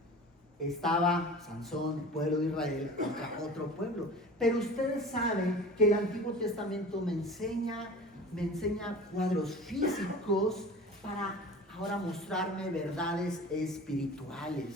estaba Sansón, el pueblo de Israel, contra otro pueblo. Pero ustedes saben que el Antiguo Testamento me enseña cuadros físicos para ahora mostrarme verdades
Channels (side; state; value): both; normal; correlation 0.38